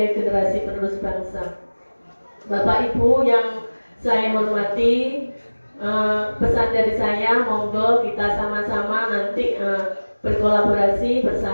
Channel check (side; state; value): both; inverted; correlation -1.00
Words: generasi penerus bangsa. Bapak Ibu yang saya hormati, pesan dari saya, monggo kita sama-sama nanti berkolaborasi